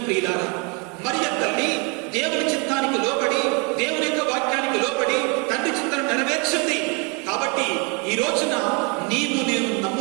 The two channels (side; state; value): left; quieter; 32.6 dB